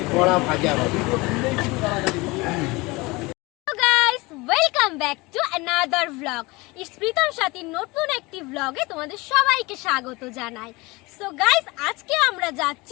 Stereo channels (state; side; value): quieter; right; 23.6 dB